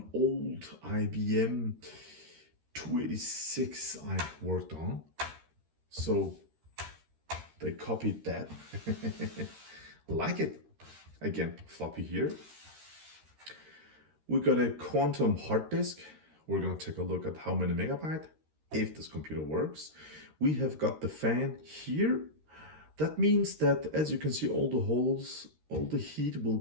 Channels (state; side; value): late; left; 13 ms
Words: old IBM 286 I worked on. So they copied that. Like it. Again, floppy here. We got a quantum hard disk. We're going to take a look at how many megabyte, if this computer works. We have got the fan here. That means that, as you can see, all the holes, all the heat will